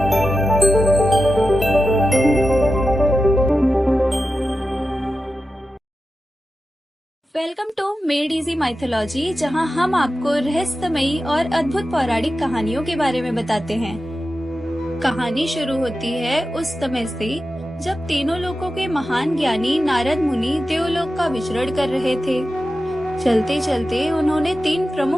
Welcome to Made Easy Mythology, जहां हम आपको रहस्यमयी और अद्भुत पौराणिक कहानियों के बारे में बताते हैं। कहानी शुरू होती है उस समय से जब तीनों लोकों के महान ज्ञानी नारद मुनि देवलोक का विचरण कर रहे थे। चलते चलते उन्होंने तीन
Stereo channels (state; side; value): normal; both; correlation 0.91